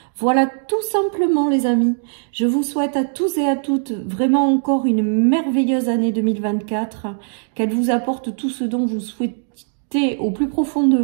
Voilà tout simplement les amis. Je vous souhaite à tous et à toutes vraiment encore une merveilleuse année 2024. Qu'elle vous apporte tout ce dont vous souhaitez au plus profond de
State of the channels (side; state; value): left; silent; digital silence